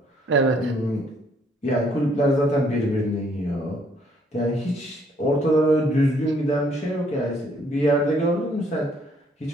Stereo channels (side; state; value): both; normal; correlation 0.66